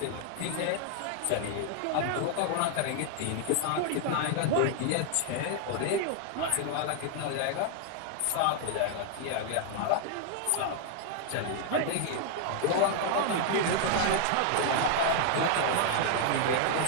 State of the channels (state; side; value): different; both; correlation 0.00